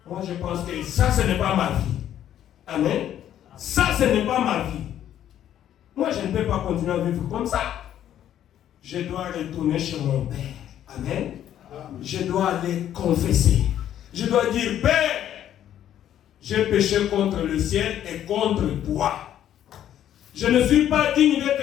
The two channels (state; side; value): quieter; right; 11.0 dB